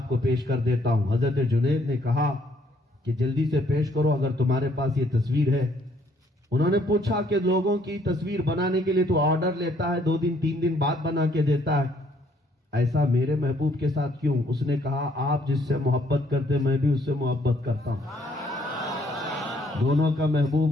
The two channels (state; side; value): normal; both; correlation 0.66